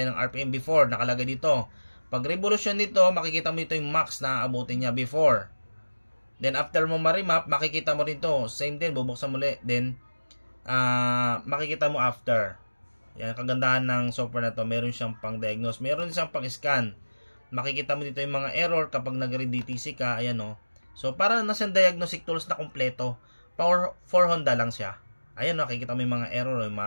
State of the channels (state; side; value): inverted; both; correlation -1.00